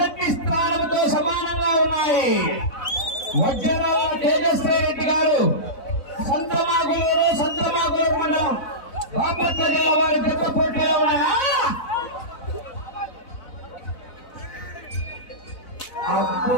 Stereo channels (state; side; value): late; right; 4.0 ms